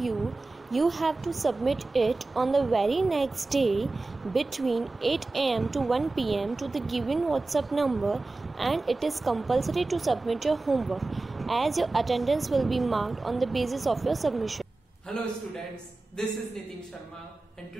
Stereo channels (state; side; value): quieter; left; 3.3 dB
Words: you have to submit it on the very next day between 8 am to 1 pm to the given WhatsApp number, and it is compulsory to submit your homework as your attendance will be marked on the basis of your submission. Hello students, this is Nitin Sharma and